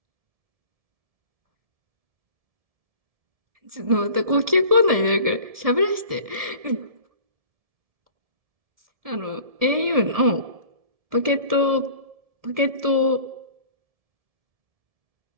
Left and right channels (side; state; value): left; late; 1.7 ms